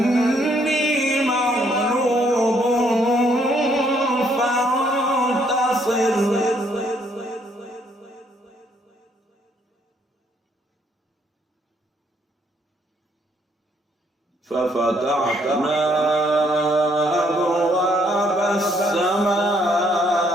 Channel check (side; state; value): both; normal; correlation 0.69